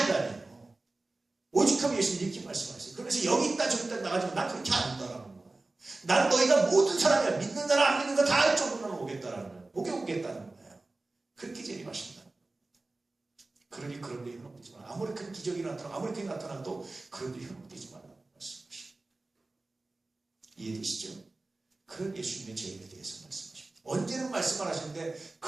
인간이에요. 오직하면 예수님 이렇게 말씀하세요. 그래서 여기 있다 저기 있다 나가지고 난 그렇게 안 한다라는 거예요. 난 너희가 모든 사람이야. 믿는 사람 안 믿는 거 다 할 정도로 오겠다라는 거예요. 오겠다는 거예요. 그렇게 재림하신다. 그러니 그런 데 현혹되지 마라. 아무리 큰 기적이 나타나고 아무리 크게 나타나도 그런 데 현혹되지 말라고 말씀하십니다. 이해되시죠? 그런 예수님의 재림에 대해서 말씀하십니다. 언제는 말씀을 하시는데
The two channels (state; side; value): quieter; left; 3.2 dB